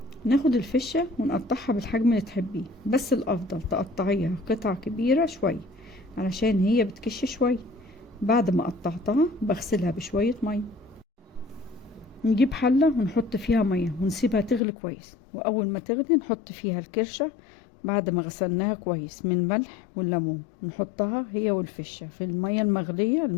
ناخد الفشة ونقطعها بالحجم اللي تحبيه، بس الافضل تقطعيها قطع كبيرة شوية علشان هي بتكش شوية. بعد ما قطعتها بغسلها بشوية مية، نجيب حلة ونحط فيها مية ونسيبها تغلي كويس، واول ما تغلي نحط فيها الكرشة بعد ما غسلناها كويس من الملح والليمون، نحطها هي والفشة في المية المغلية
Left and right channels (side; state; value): right; drops out; at 14.6 s